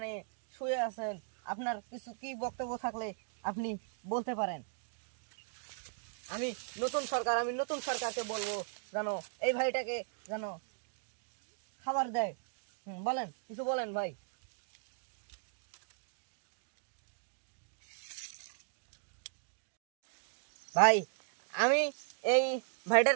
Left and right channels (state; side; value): silent; left; digital silence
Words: শুয়ে আছেন, আপনার কিছু কি বক্তব্য থাকলে আপনি বলতে পারেন। আমি আমি নতুন সরকারকে বলবো জানো এই ভাইটাকে জানো খাবার দেয়। বলেন, কিছু বলেন ভাই। ভাই, আমি এই